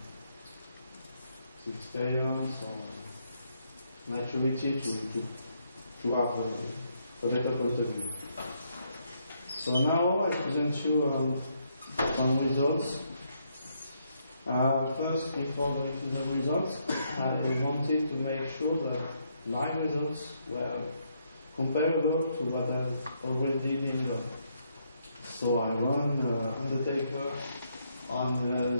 experience or maturity to have a better point of view. So now I present you some results. First, before going to the results, I wanted to make sure that my results were comparable to what has already been done. So I run Undertaker on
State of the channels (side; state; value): both; inverted; correlation -0.75